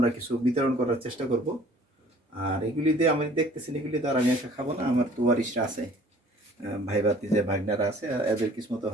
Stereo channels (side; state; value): both; normal; correlation 0.52